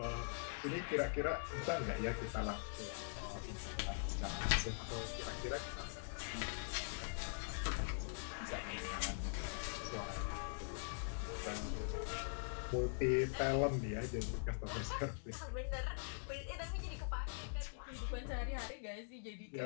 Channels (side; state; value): right; silent; digital silence